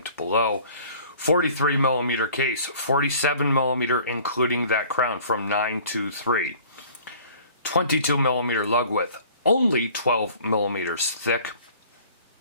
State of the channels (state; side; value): inverted; both; correlation -0.49